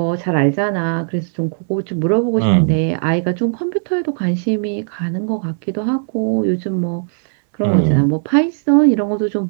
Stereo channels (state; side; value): silent; left; digital silence